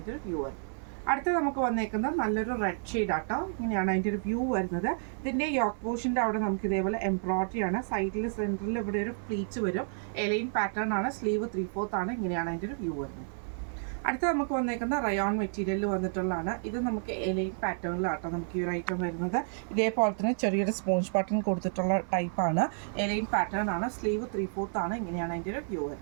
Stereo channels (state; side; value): silent; left; 57 dB below the other